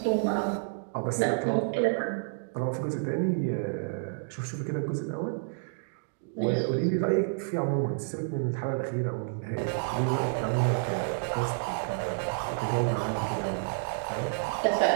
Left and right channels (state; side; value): silent; left; digital silence